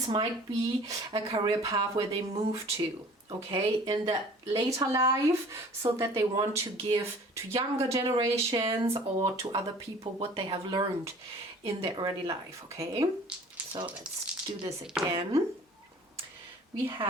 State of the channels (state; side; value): normal; both; correlation 0.48